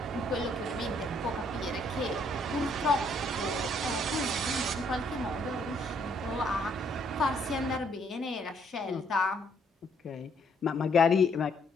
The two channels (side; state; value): both; normal; correlation 0.68